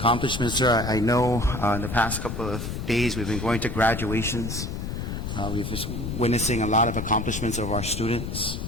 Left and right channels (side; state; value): left; noise; rumble, 5 dB below the sound